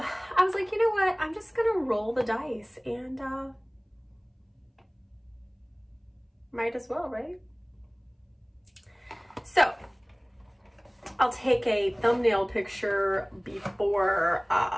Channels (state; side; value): identical; both; correlation 1.00